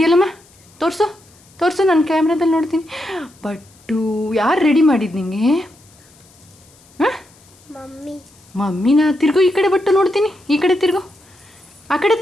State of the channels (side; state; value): left; noise; hiss, 28 dB below the sound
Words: ತೋರಿಸು ತೋರಿಸು, ನನ್ನ ಕ್ಯಾಮ್ರಾದಲ್ಲಿ ನೋಡ್ತೀನಿ. ಬಟ್ಟು ಯಾರು ರೆಡಿ ಮಾಡಿದ್ದು ನಿಂಗೆ? ಹಾಂ, ಮಮ್ಮಿನ. ತಿರುಗು ಈ ಕಡೆ, ಬಟ್ಟು ನೋಡ್ತೀನಿ. ಈ ಕಡೆ ತಿರುಗು, ಆ ಕಡೆ